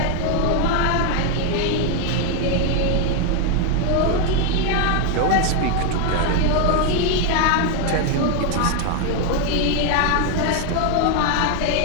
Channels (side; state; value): both; different; correlation 0.01